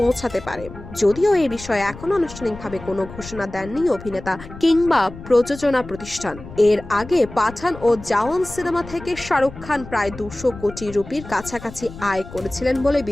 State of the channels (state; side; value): noise; left; rumble, 15 dB below the sound